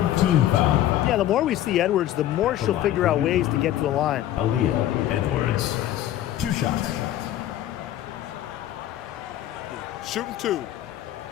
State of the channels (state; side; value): quieter; right; 12.8 dB